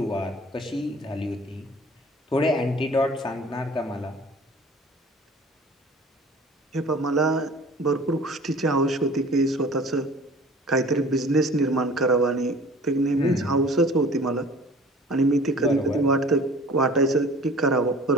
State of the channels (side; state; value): both; normal; correlation 0.46